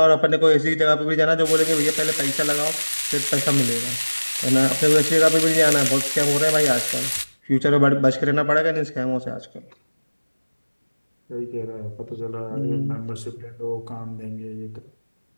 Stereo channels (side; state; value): both; inverted; correlation -1.00